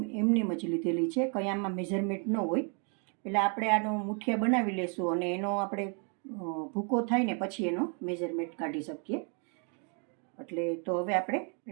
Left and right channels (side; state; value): left; quieter; 38.7 dB